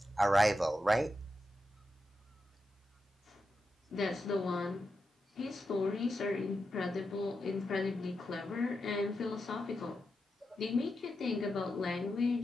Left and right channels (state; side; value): normal; both; correlation 0.88